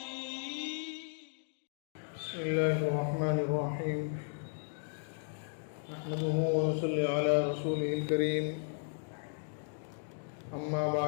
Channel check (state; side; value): silent; right; digital silence